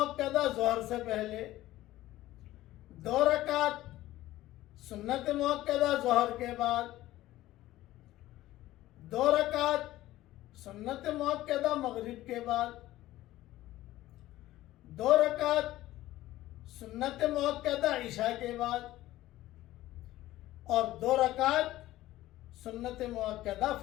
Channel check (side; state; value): right; quieter; 15.7 dB